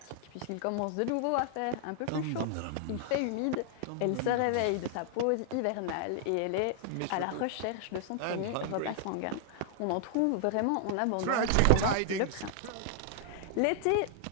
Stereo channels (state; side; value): different; both; correlation 0.00